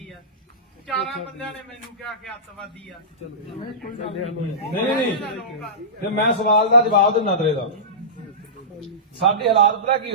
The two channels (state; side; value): normal; both; correlation -0.20